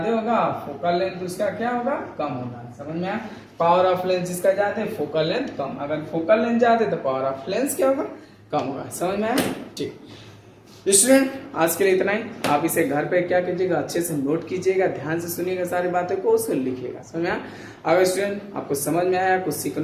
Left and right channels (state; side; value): identical; both; correlation 1.00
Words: होगा, फोकल लेंथ उसका क्या होगा, कम होगा। समझ में आया। पावर ऑफ लेंस जिसका ज्यादा, फोकल लेंथ कम। अगर फोकल लेंथ ज्यादा तो पावर ऑफ लेंस क्या होगा, कम होगा। समझ में आया। ठीक स्टूडेंट, आज के लिए इतना ही। आप इसे घर पे क्या कीजिएगा, अच्छे से नोट कीजिएगा, ध्यान से सुनिएगा सारी बातों को, उसको लिखिएगा। समझ में आया। अगर स्टूडेंट आपको समझ में आया, कुछ